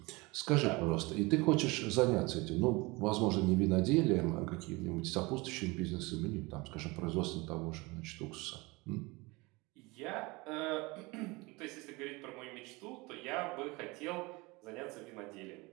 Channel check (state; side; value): quieter; left; 24.3 dB